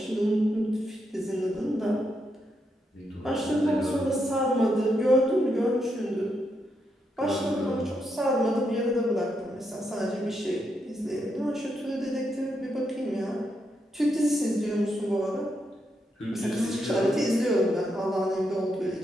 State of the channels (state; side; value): normal; both; correlation 0.81